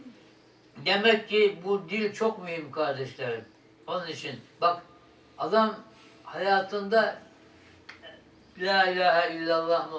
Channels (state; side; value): identical; both; correlation 1.00